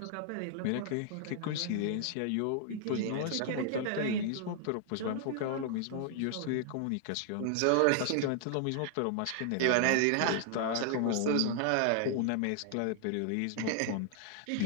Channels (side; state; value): both; different; correlation 0.00